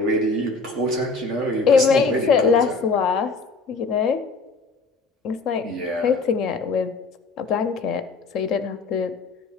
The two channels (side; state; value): right; quieter; 4.0 dB